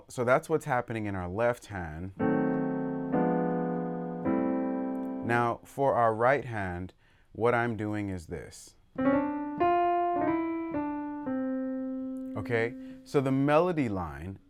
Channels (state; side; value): identical; both; correlation 1.00